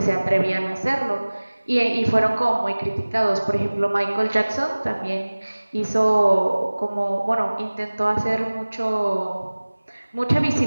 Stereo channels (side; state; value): both; inverted; correlation -1.00